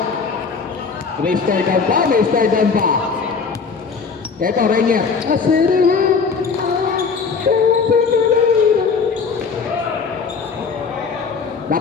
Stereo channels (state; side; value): quieter; right; 5.3 dB